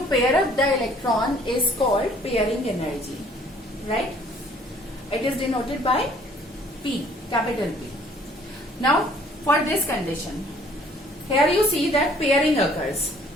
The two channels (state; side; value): normal; both; correlation 0.58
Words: pair up the electron is called pairing energy. Right? It is denoted by P, capital P. Now for this condition, here you see that pairing occurs.